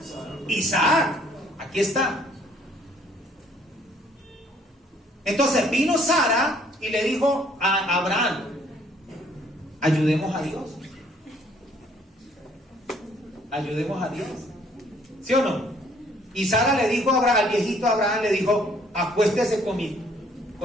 Isaac. Aquí está. Entonces vino Sara y le dijo a Abraham: ayudemos a Dios. Ayudemos a Dios. ¿Sí o no? Y Sara le dijo a Abraham, al viejito Abraham, le dijo: acuéstese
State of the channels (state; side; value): normal; both; correlation 0.62